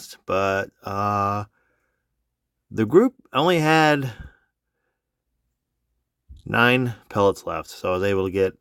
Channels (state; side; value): identical; both; correlation 1.00